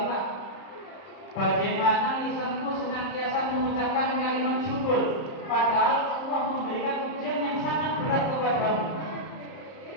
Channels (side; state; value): right; late; 30 ms